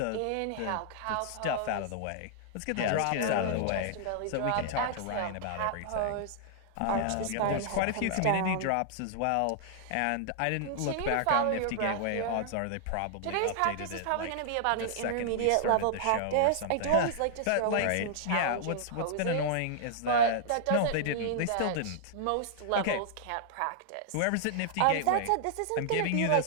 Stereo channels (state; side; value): different; both; correlation -0.01